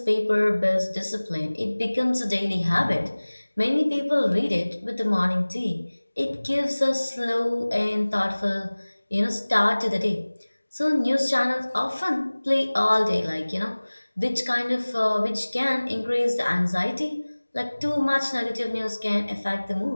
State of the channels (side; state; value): both; inverted; correlation -1.00